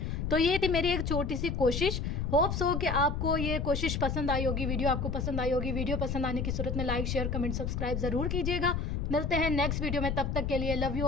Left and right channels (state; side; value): noise; left; rumble, 1 dB below the sound